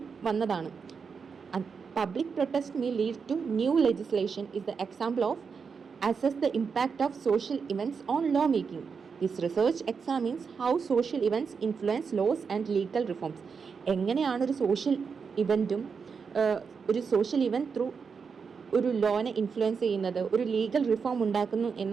വന്നതാണ്. Public protest may lead to new legislation is the example of assess the impact of social events on law making. This research examines how social events influence laws and legal reforms. എങ്ങനെയാണ് ഒരു social ഇവൻറ്റും ഒരു social event through ഒരു ലോനെ influence ചെയ്യുന്നത്, ഒരു legal reform ഉണ്ടാക്കുന്നു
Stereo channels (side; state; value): left; quieter; 5.7 dB